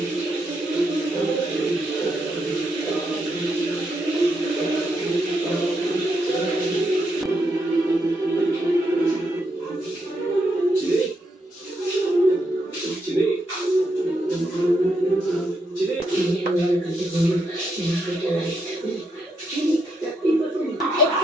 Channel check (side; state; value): both; normal; correlation 0.80